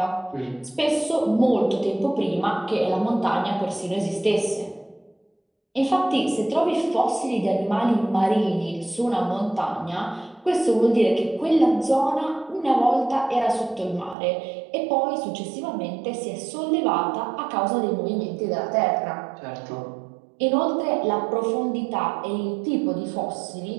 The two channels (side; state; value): left; drops out; at 14.2 s